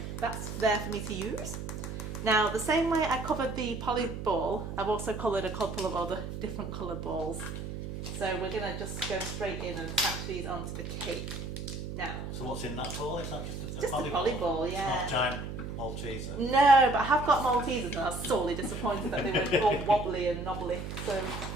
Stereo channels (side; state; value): right; noise; hum, 7 dB below the sound